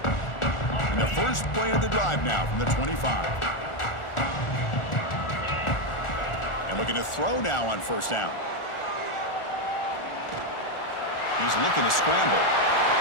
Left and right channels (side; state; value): right; late; 1.4 ms